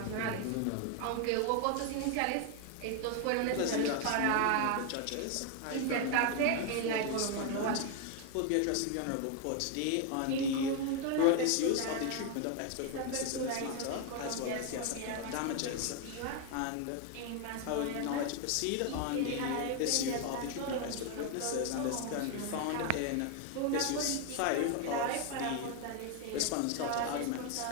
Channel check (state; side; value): different; both; correlation 0.01